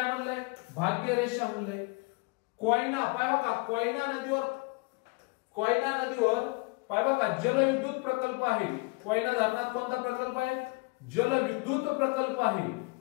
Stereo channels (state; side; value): quieter; right; 28.1 dB